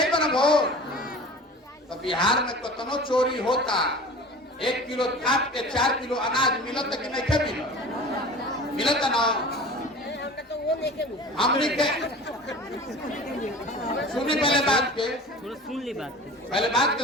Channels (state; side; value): normal; both; correlation 0.39